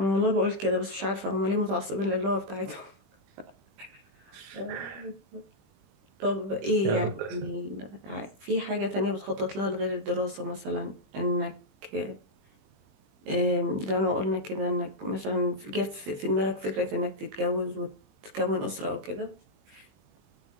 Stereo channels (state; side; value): late; left; 20 ms